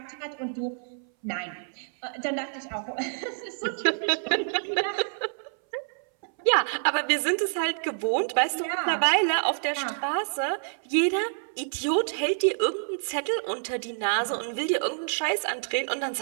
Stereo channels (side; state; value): left; silent; 60 dB below the other